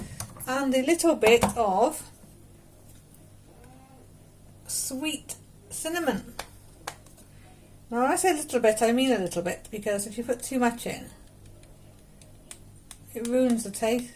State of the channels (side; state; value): both; identical; correlation 1.00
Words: are. And a little bit of sweet cinnamon. Now when I say a little bit, I mean a little bit, because if you put too much in, it ruins the